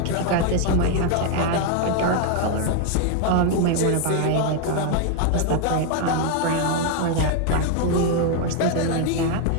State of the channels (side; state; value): both; different; correlation 0.00